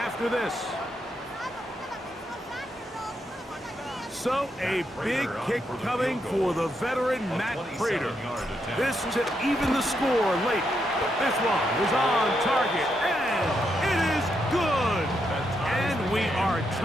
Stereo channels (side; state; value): both; normal; correlation 0.80